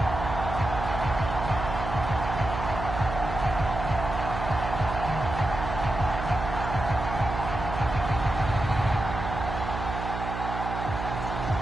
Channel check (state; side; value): noise; right; hum, 6 dB below the sound